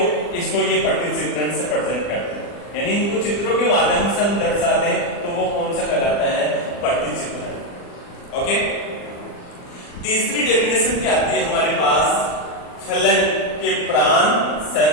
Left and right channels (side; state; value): right; late; 40 ms